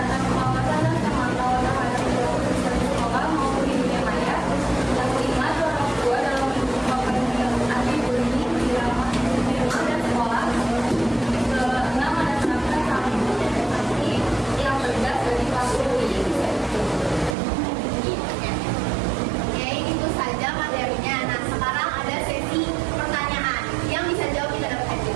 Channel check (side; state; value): left; drops out; at 17.4 s